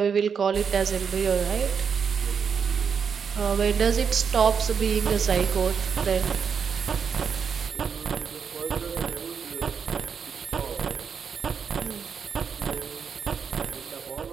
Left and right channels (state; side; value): quieter; left; 6.6 dB